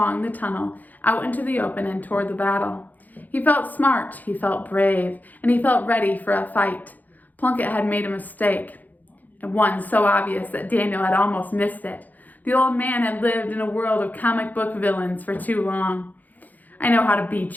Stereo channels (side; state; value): right; late; 0.082 ms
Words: the tunnel, out into the open and toward the battle. He felt smart, he felt brave, and he felt ready for a fight. Plunkett had made a mistake, and one so obvious that Daniel had almost missed it. The old man had lived in a world of comic book villains for too long. "I know how to